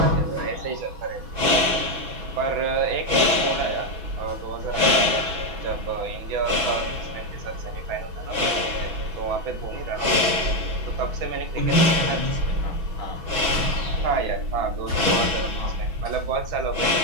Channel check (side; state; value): left; late; 6.1 ms